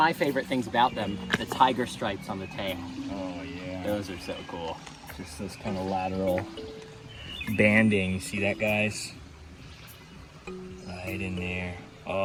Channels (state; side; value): identical; both; correlation 1.00